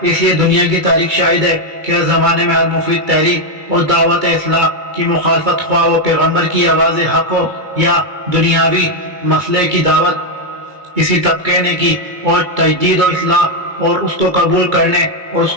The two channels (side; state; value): left; late; 2.3 ms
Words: اس لیے دنیا کی تاریخ شاہد ہے کہ ہر زمانے میں ہر مفید تحریک اور دعوت اصلاح کی مخالفت، خواہ وہ پیغمبر کی آواز حق ہو یا دنیاوی مسئلے کی دعوت، اسی طبقے نے کی، اور تجدید و اصلاح اور اس کو قبول کرنے اور اس